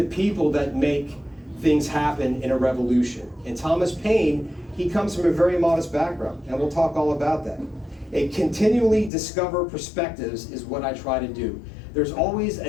people, that make things happen in a revolution. And Thomas Paine, he comes from a very modest background, and we'll talk all about that. A continually discover perspectives is what I try to do. There's always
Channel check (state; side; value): drops out; right; at 9.1 s